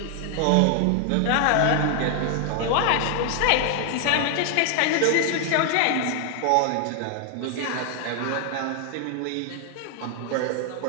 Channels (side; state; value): both; different; correlation 0.00